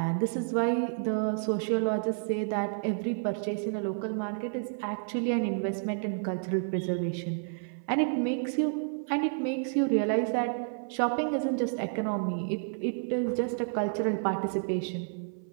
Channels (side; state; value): left; silent; 58 dB below the other